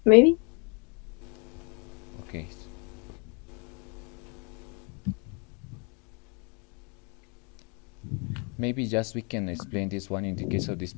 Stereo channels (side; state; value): right; quieter; 34.1 dB